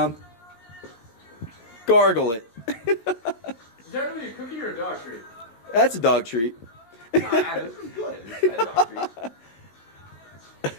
Gargle it. Is that really a cookie or a dog treat? That's a dog treat. Nah, this is good. It's a dog treat.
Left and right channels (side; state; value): right; late; 17 ms